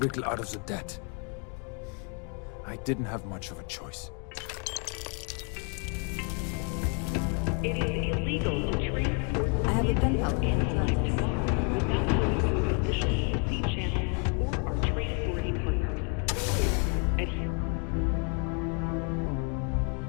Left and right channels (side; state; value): right; quieter; 38.1 dB